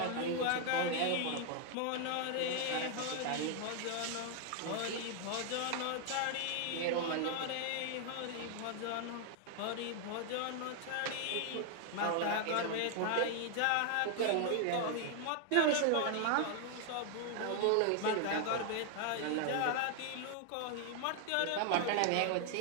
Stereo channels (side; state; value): both; different; correlation 0.00